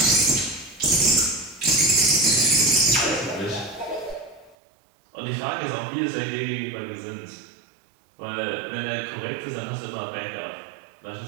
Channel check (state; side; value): drops out; left; at 4.5 s